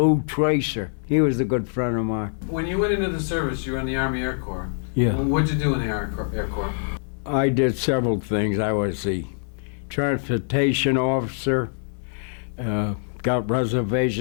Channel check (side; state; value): right; silent; digital silence